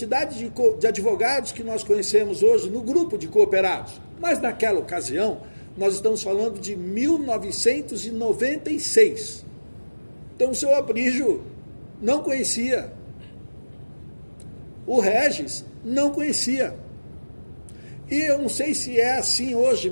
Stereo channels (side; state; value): both; inverted; correlation -1.00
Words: de advogados que nós conhecemos hoje no grupo de cooperados. Mas naquela ocasião, nós estamos falando de 1996. Então, o seu Aprígio não conhecia. O Regis não conhecia. E eu não sei se é assim hoje,